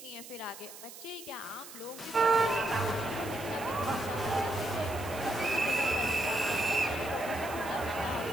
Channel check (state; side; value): noise; right; hiss, 14 dB below the sound